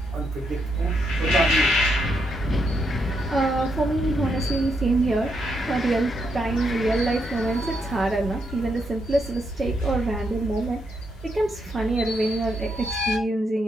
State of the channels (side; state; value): both; normal; correlation 0.79